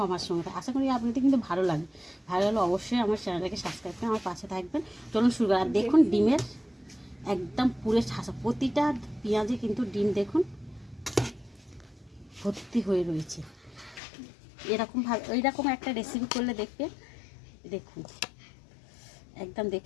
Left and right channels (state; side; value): drops out; right; at 14.0 s